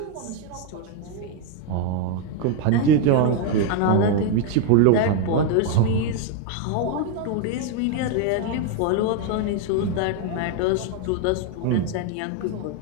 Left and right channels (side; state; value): both; different; correlation 0.01